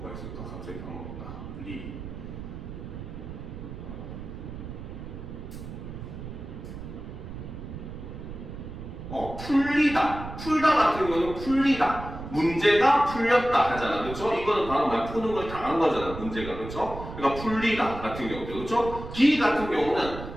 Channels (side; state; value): right; noise; rumble, 10 dB below the sound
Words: 있을까? 갑자기 까먹었다. 풀리다. 풀다 같은 경우는 풀리다. 문제가 풀렸다 하잖아. 그렇죠? 이거는 바로 말 푸는 걸 당한 거잖아. 문제가. 그렇죠? 그러니까 풀리다 같은 경우도. 그렇죠? 기 같은 경우는